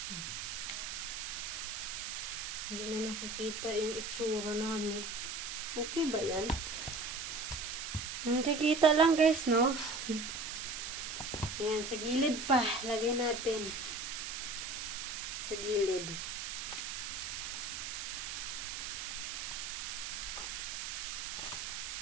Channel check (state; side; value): noise; right; hiss, 5 dB below the sound